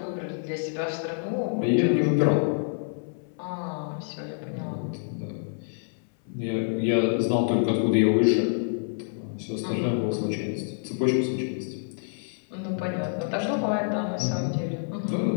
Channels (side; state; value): right; silent; 60 dB below the other